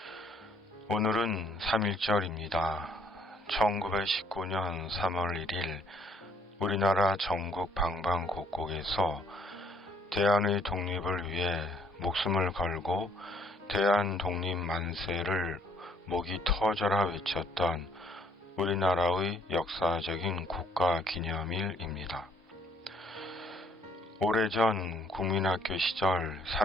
오늘은 3.1절입니다. 1919년 3월 1일 우리나라 전국 방방곡곡에서 대한의 독립을 위해 목숨을 걸고 대한 독립 만세를 목이 터져라 외쳤던 우리나라의 역사적인 국가 기념일입니다. 오래전 국민학교 시절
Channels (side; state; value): both; normal; correlation 0.64